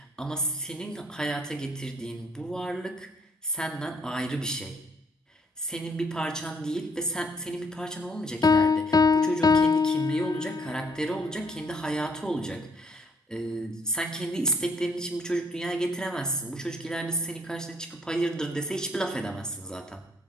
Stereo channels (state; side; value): normal; both; correlation 0.67